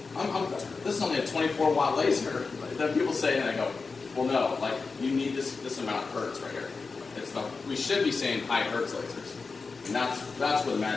this is only a 24-watt laser. Then people say, and I go, well, no, like you need this amount of hertz right here. We should be saying high hertz lasers, and that's where the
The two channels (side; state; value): right; quieter; 4.4 dB